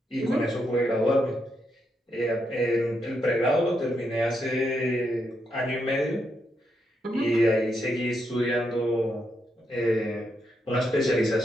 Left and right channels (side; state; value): both; normal; correlation 0.80